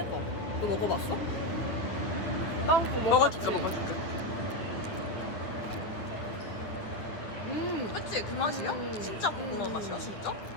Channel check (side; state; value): right; late; 9.5 ms